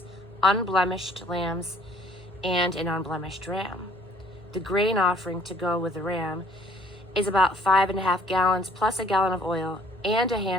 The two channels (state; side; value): normal; both; correlation 0.58